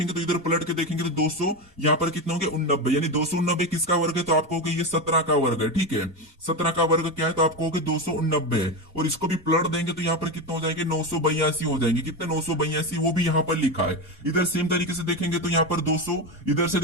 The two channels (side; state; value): both; normal; correlation 0.16